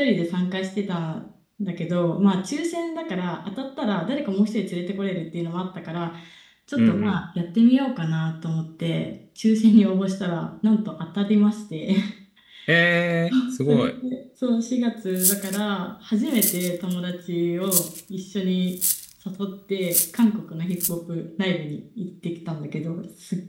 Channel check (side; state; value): both; identical; correlation 1.00